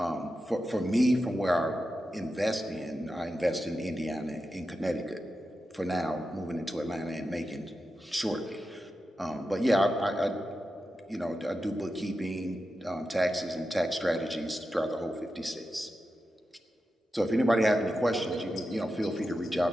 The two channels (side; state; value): both; normal; correlation 0.90